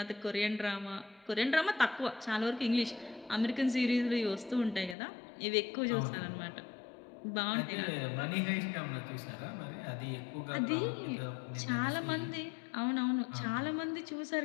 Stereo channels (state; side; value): drops out; right; at 5.0 s